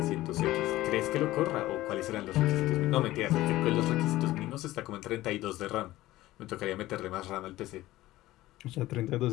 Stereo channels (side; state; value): right; quieter; 16.6 dB